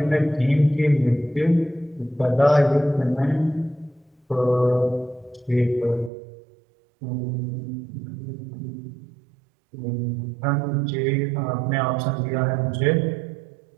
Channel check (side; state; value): left; drops out; at 6.1 s